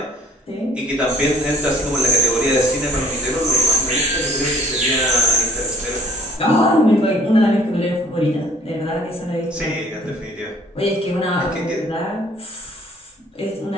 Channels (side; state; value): both; normal; correlation 0.54